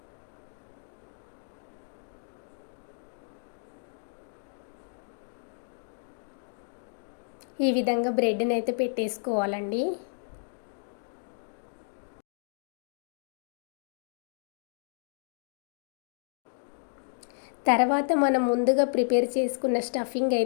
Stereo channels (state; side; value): silent; right; digital silence